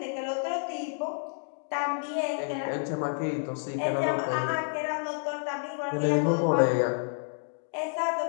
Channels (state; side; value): silent; right; digital silence